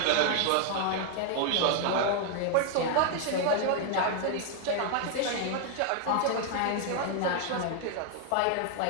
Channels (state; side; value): different; both; correlation 0.00